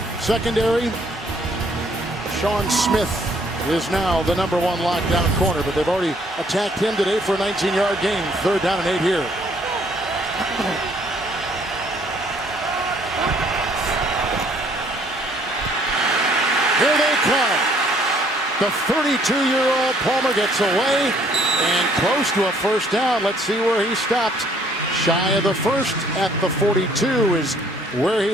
Secondary, Sean Smith is now the #1 lockdown corner, but they've already attacked him today for a 19-yard gain. 3rd down and 8 here. Here they come. The 32-year-old Palmer gets away and close to a 1st down. Let's see where he stopped. Shy of the 1st at the 42 is where he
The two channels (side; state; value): both; normal; correlation 0.63